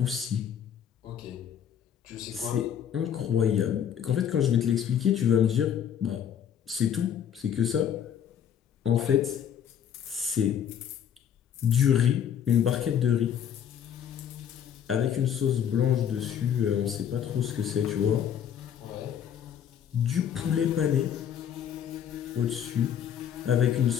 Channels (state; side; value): quieter; right; 9.0 dB